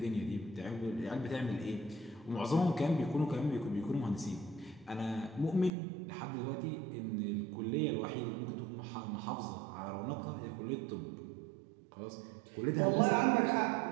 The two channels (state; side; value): drops out; left; at 5.7 s